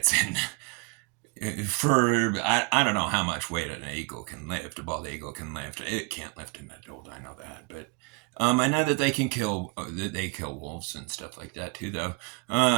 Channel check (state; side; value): quieter; left; 30.0 dB